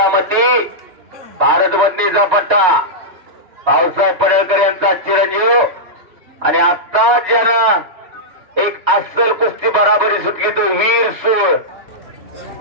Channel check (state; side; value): late; left; 2.9 ms